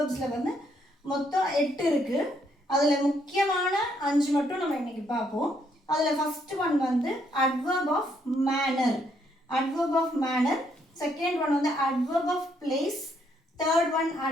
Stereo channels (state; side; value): normal; both; correlation 0.72